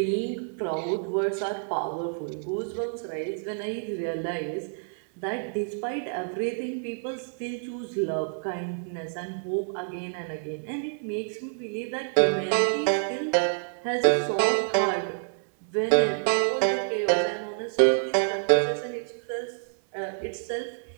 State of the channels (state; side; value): silent; left; 59 dB below the other